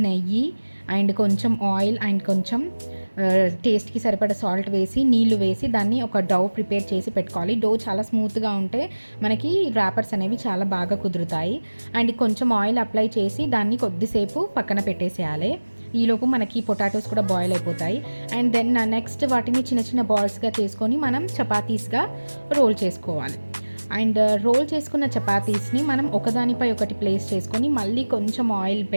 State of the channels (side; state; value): both; inverted; correlation -1.00